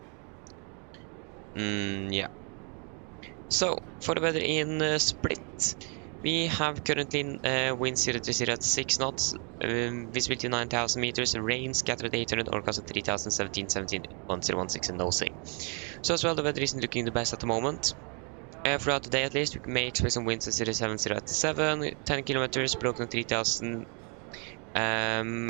Yeah. So for the weather in Split, we have currently wind 030 at 6 knots, visibility 9,000 meters, rain scattered 800, orcast at 3,000, 17, 1016 and nosing. So as well, the weather isn't looking the best at the moment. Throughout the day at least, we may expect some winds at 070 at 7, 10 kilometers, broken 3,000,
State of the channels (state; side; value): quieter; left; 36.9 dB